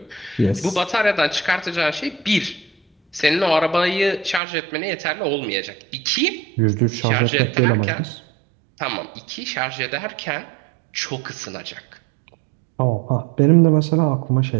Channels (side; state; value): left; drops out; at 4.4 s